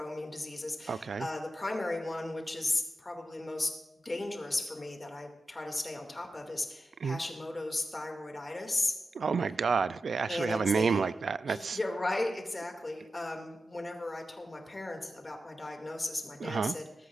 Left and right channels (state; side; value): normal; both; correlation 0.91